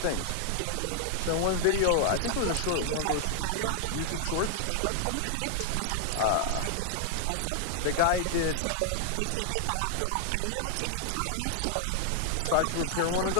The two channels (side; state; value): both; different; correlation 0.00